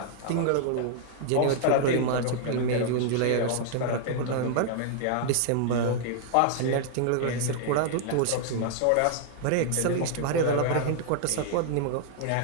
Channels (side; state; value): both; different; correlation -0.01